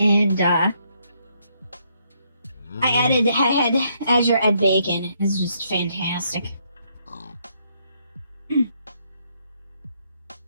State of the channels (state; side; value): inverted; both; correlation -0.73